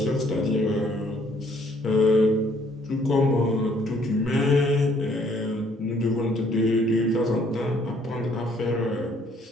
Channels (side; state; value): both; normal; correlation 0.64